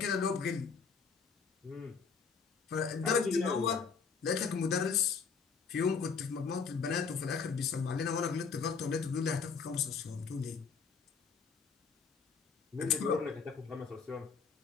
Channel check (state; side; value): quieter; right; 5.5 dB